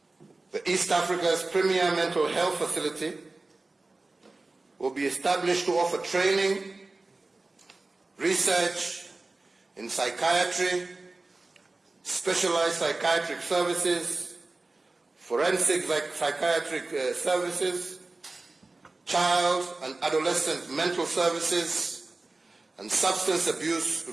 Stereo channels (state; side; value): quieter; left; 3.3 dB